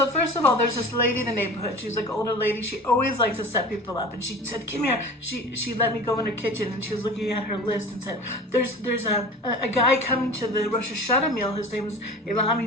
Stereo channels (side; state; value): both; normal; correlation 0.37